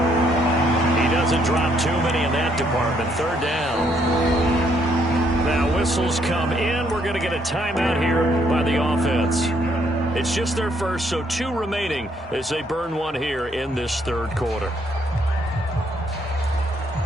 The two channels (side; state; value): both; normal; correlation 0.70